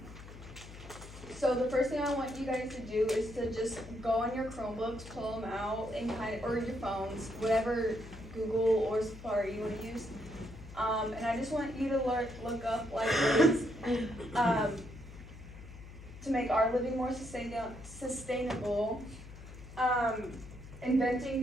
So the first thing I want you guys to do is to just go on your Chromebooks, pull them out, and or your phones, whatever Google or Safari you want to use. And I just want you to look up like ways to make our living more sustainable. Inventing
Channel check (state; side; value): noise; left; hum, 15 dB below the sound